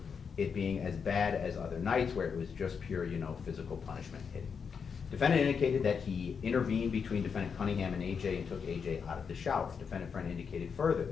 it being as bad as other nights where it was just pure, you know, physical punishment hitting. Defendant indicated that he intervened between Defendant Cunningham and AJ and took AJ out of the shower. Defendant Friend indicated further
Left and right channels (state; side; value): quieter; right; 6.2 dB